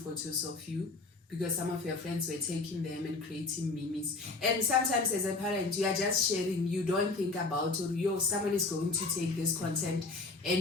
of you because some of your friends were taking them and creating memes. And sometimes as a parent, you are just sharing, you don't think about, or someone is going to take this content and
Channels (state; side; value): quieter; right; 3.6 dB